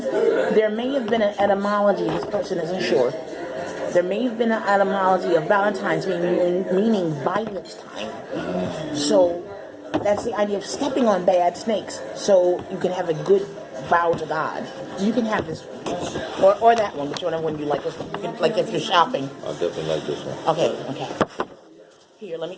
there may have been an etymology, this person isn't sure. There may have been an etymology of Valentine's meaning violet time. So that's the idea of stepping on bad snakes so you can have a good vow to God. You can have this one. Or that one, whichever one you like. Like if you're shopping. I definitely like this one. Okay. Here, let me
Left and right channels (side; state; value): both; identical; correlation 1.00